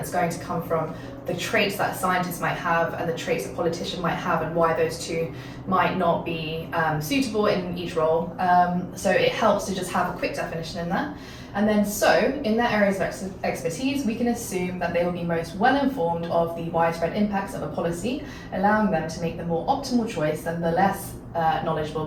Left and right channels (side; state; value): both; identical; correlation 1.00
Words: is going to come from the traits that a scientist might have and the traits a politician might have, and why those two might not be suitable in each role. So it helps to just have a quick definition in there. And then so, in their areas of expertise, we can assume that they will be most well informed of the widespread impacts of a policy, allowing them to make the more optimal choice than the less knowledgeable